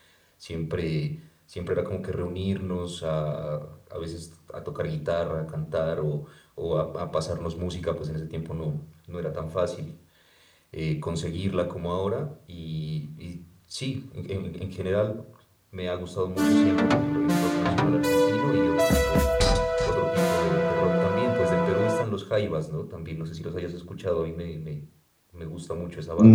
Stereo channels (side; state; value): both; identical; correlation 1.00